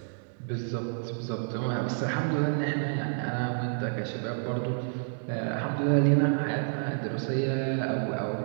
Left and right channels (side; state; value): left; silent; 58 dB below the other